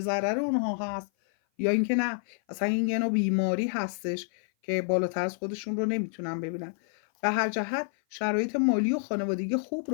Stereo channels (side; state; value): right; silent; 56 dB below the other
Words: ضرر اونها هست یا اینکه نه، اصلا این یه نوع بیماری هستش که بالاتر از خودشون رو نمیتونن ببینن. به هر جهت شرایط مالی و خانوادگی خوب